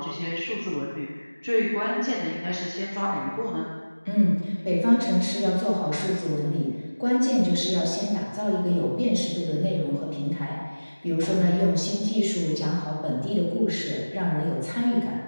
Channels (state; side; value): inverted; both; correlation -1.00